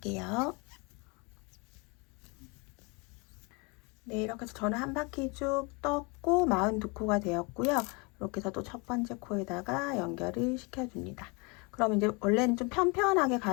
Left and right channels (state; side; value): quieter; right; 29.9 dB